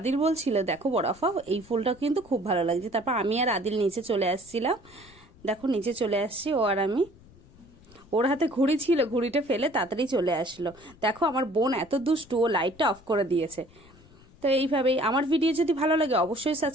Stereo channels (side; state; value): left; noise; rumble, 25 dB below the sound